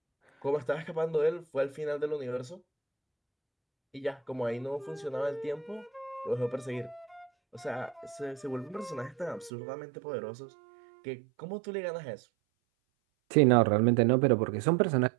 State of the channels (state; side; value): drops out; left; at 9.5 s